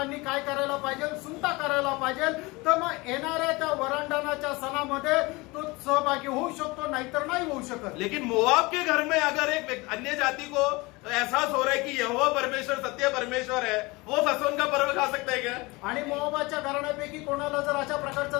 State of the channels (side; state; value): right; quieter; 23.9 dB